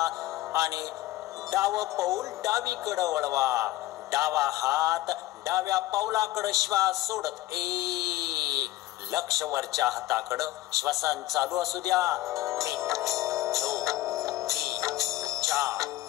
आणि डावं पाऊल डावीकडं वळवा. डावा हात डाव्या पावलाकडं, श्वास सोडत. 1 लक्ष वरच्या हाताकडं. श्वसन चालू असू द्या. 1 2 3 4.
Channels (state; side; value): quieter; right; 16.6 dB